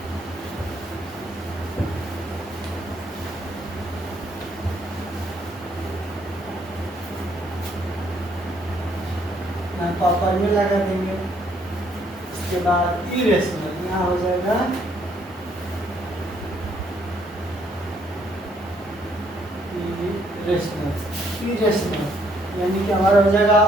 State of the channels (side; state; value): both; normal; correlation 0.68